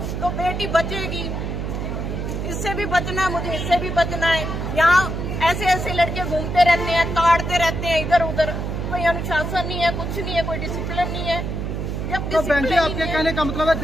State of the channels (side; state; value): right; noise; hum, 3 dB below the sound